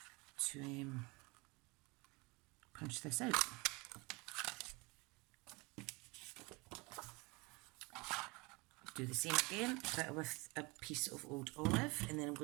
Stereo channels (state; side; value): quieter; left; 26.3 dB